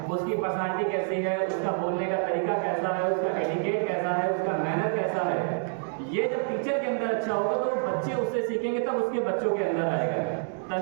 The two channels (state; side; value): silent; left; 60 dB below the other